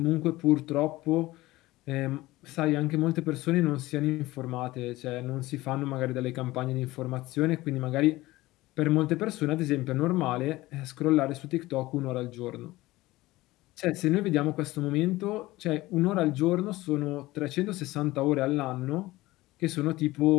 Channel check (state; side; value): quieter; right; 18.5 dB